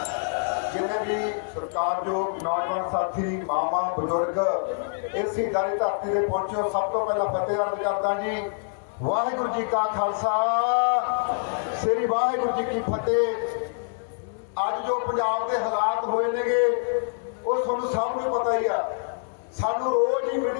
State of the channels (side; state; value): right; silent; 61 dB below the other